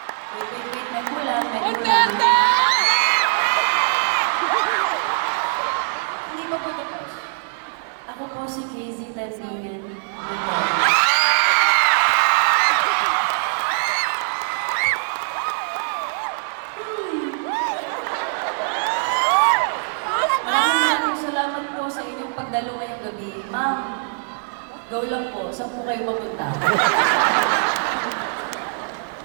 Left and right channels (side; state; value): left; silent; 58 dB below the other